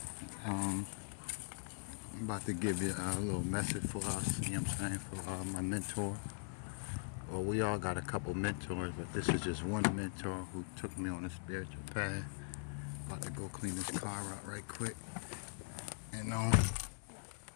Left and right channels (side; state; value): right; silent; 51 dB below the other